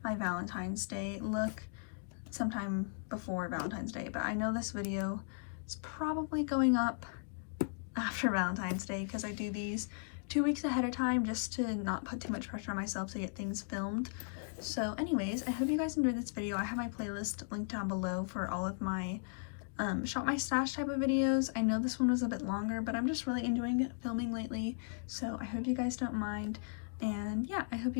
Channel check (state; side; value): silent; right; digital silence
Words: my Valentine's Day look sometime before Valentine's Day, but I know this video is probably going up after Valentine's Day because I do these 2 weeks ahead of time just to not put too much pressure on myself to get things filmed. So anyways, I hope you guys enjoyed this video. I have my playlist linked down below for all of my shop my stash type of videos. I know this one was a bit longer, but I'm just really enjoying filming lately, so I hope you guys don't mind. And yeah, I hope